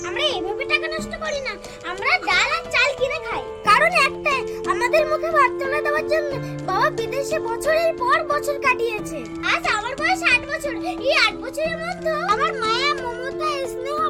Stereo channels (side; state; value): both; identical; correlation 1.00